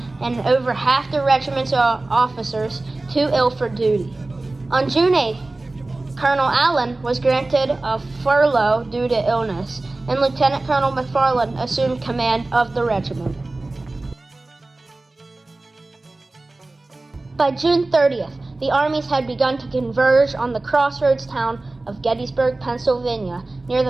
and over half the regiment's officers too ill for duty. On June 8th, Colonel Allen was granted a furlough due to illness, and Lieutenant Colonel McFarland assumed command of the regiment. By June 30th, the armies had begun to converge on the crossroads town of Gettysburg, Pennsylvania, near the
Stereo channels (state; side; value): quieter; left; 3.0 dB